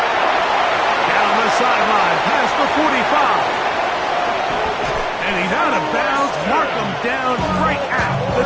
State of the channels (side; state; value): both; identical; correlation 1.00